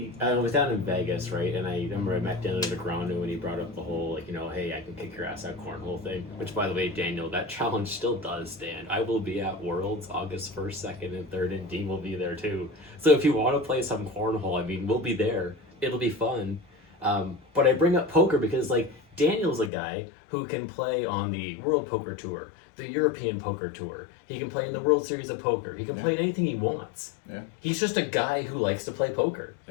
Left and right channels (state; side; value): drops out; right; at 19.7 s